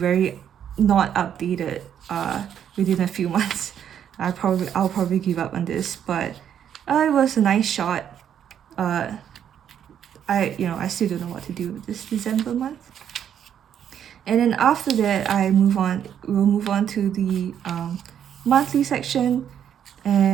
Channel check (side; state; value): left; quieter; 9.2 dB